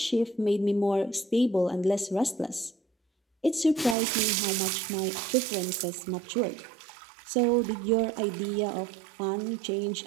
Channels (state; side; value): drops out; left; at 4.0 s